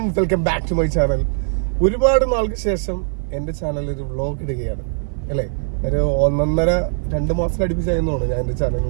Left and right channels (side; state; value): left; silent; 55 dB below the other